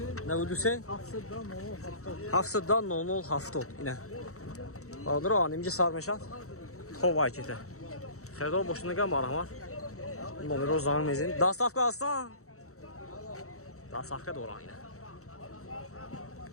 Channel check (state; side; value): late; right; 0.64 ms